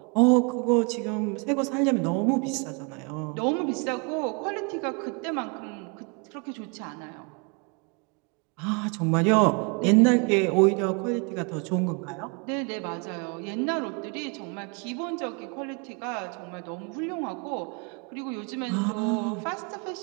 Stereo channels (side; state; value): left; quieter; 33.8 dB